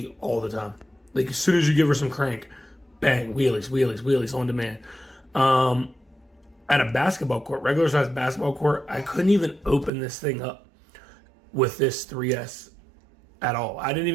all the time. Like as soon as you give her some crank, bang, wheelies on demand. At a basketball court, regular size basketball court, I couldn't even open this thing up with this 3S at all. I didn't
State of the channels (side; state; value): left; drops out; at 9.9 s